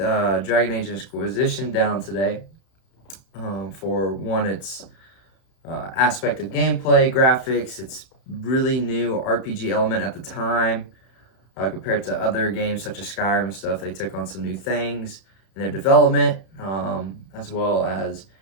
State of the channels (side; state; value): right; late; 31 ms